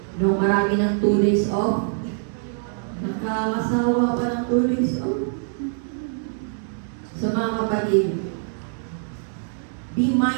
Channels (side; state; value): left; silent; digital silence